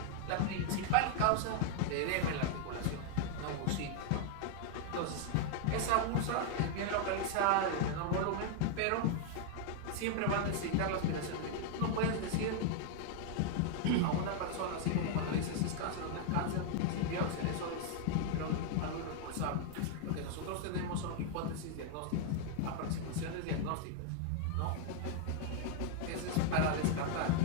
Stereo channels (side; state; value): both; different; correlation 0.00